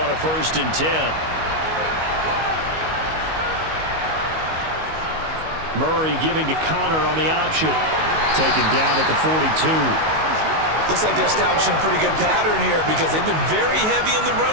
a 1st and 10. Murray giving to Connor on the option. Taken down at the 42. Looks like they're establishing a pretty good pattern here because they've been very heavy in the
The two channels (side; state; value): left; late; 19 ms